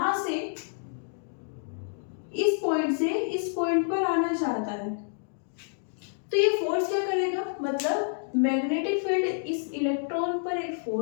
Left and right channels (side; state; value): right; silent; digital silence